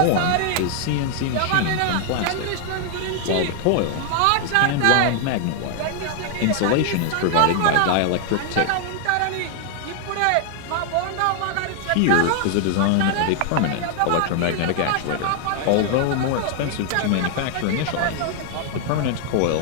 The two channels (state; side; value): different; both; correlation 0.00